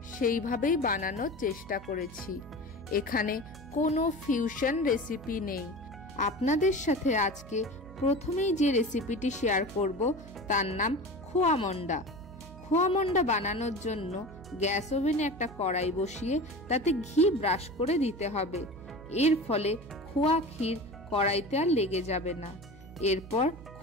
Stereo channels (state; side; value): noise; right; hum, 17 dB below the sound